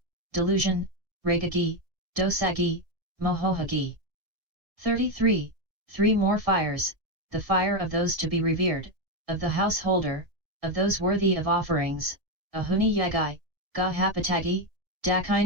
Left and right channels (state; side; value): late; left; 1.7 ms